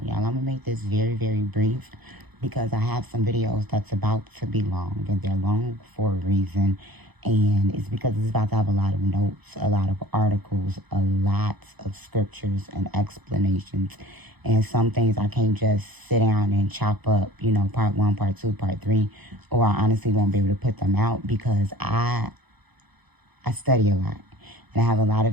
Y'all, I'm going to make this very, very brief because I have some videos that's about to be long, and they're long for a reason. And it's because it's about to have a lot of notes, a lot of articles, a lot of scriptures and explanations. And some things I can't just sit down and chop up, part one, part two, part three, or I honestly won't be able to put them out because I study a lot and I have a lot of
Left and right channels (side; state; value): left; late; 0.99 ms